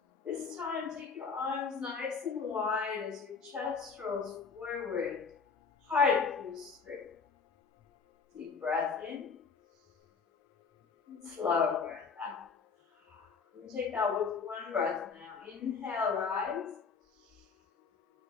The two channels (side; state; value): right; quieter; 5.3 dB